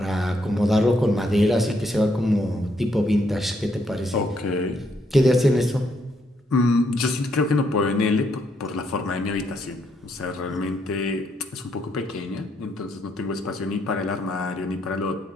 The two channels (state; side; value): normal; both; correlation 0.74